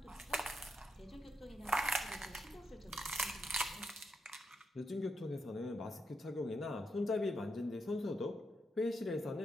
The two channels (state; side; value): normal; both; correlation 0.82